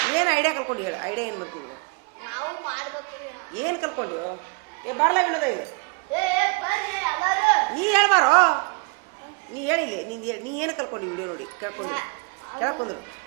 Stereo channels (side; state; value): left; quieter; 31.5 dB